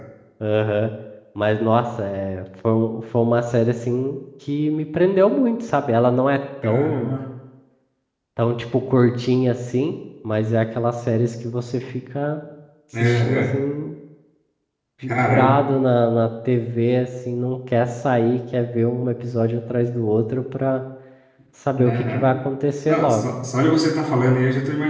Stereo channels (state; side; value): identical; both; correlation 1.00